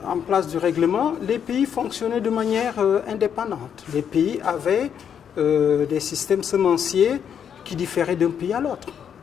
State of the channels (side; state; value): right; quieter; 8.2 dB